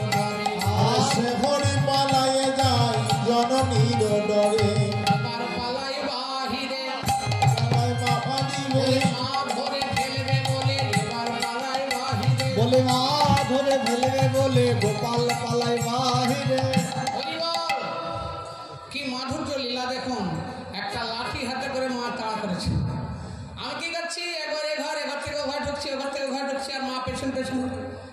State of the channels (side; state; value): both; identical; correlation 1.00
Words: আর সে হরি পালাইয়ে যায় জননীর ডরে। এবার পালাই বাহিরে, পালাই বাবা দিবে, মা ভরে ফেলবে বলে এবার পালাই বাহিরে। বলে মা ধরে ফেলবে বলে গোপাল পালাই বাহিরে। হরিবল, কি মাধুর্য লীলা দেখুন। একটা লাঠি হাতে করে মা তাড়া করেছে। আমি কি করছি, একবার এঘর থেকে ঘর ঢুকছি, ওঘর থেকে ঘর ঢুকছি, আর মা পেছন পেছন।